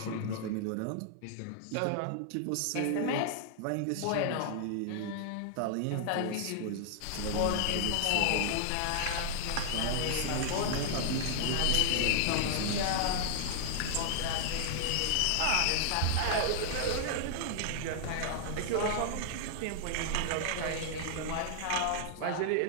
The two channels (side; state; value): both; different; correlation 0.00